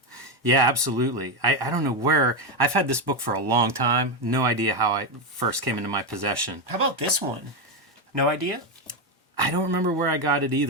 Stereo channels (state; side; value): normal; both; correlation 0.08